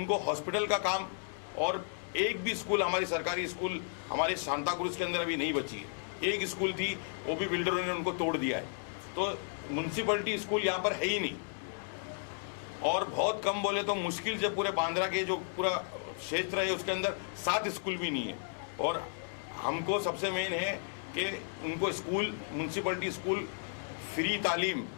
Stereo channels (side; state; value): right; silent; digital silence